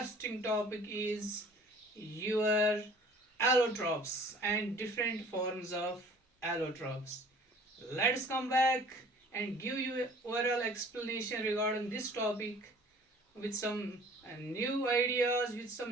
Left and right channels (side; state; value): both; normal; correlation 0.50